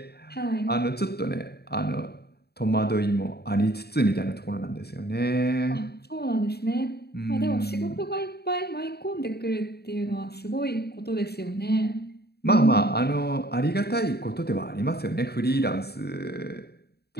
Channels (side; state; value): right; late; 0.47 ms